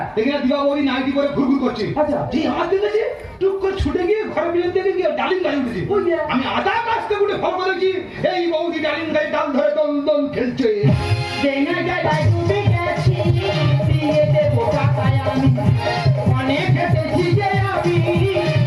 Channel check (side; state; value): both; identical; correlation 1.00